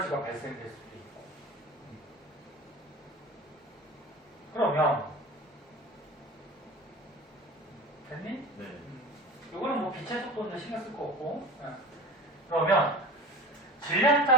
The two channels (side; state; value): both; normal; correlation 0.35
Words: 발생될 수도 있고. 그러면 됐니? 네. 이거는 뭐 빛의 속도는 신경 쓸 거 없고. 그러면 질량